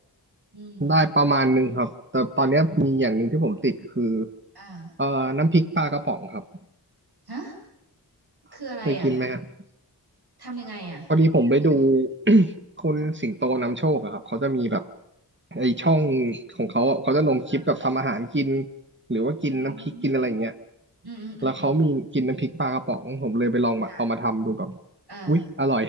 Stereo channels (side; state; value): both; normal; correlation 0.35